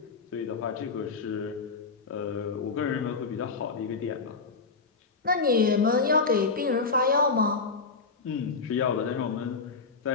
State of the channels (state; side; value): quieter; right; 4.4 dB